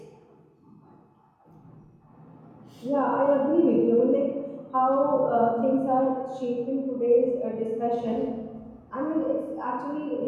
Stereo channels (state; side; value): identical; both; correlation 1.00